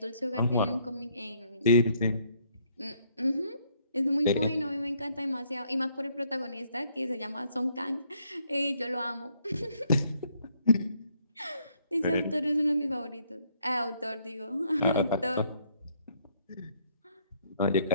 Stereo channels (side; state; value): both; inverted; correlation -0.68